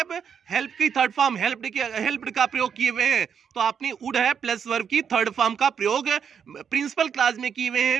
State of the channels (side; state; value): left; quieter; 7.4 dB